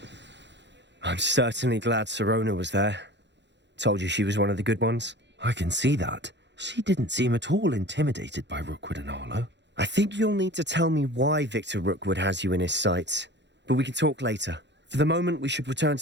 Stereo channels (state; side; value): late; left; 0.52 ms